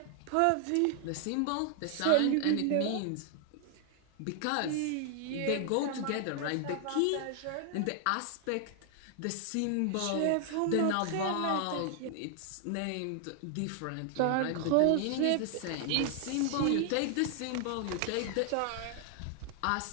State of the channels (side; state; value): both; different; correlation 0.00